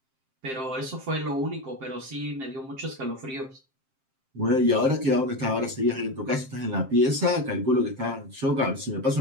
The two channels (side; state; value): left; late; 7.6 ms